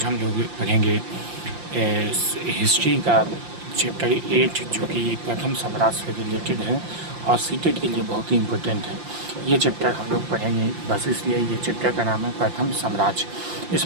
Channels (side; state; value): left; late; 5.7 ms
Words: हम लोग पढ़ेंगे हिस्ट्री का चैप्टर 8 जो कि प्रथम साम्राज्य से रिलेटेड है और सीटेट के लिए बहुत ही इम्पोर्टेंट है। ये चैप्टर हम लोग पढ़ेंगे बस इसलिए ये चैप्टर का नाम है प्रथम साम्राज्य।